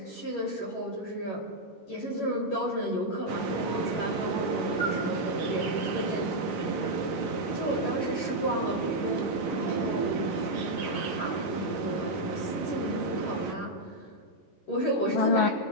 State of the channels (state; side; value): late; right; 11 ms